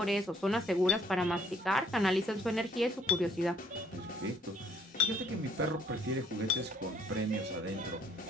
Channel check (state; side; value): normal; both; correlation 0.64